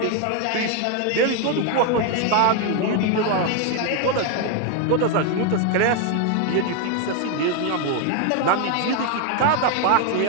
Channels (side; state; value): both; different; correlation 0.01